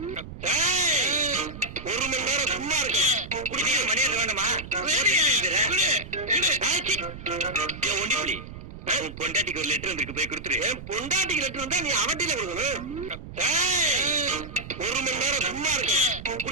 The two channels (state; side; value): noise; right; rumble, 12 dB below the sound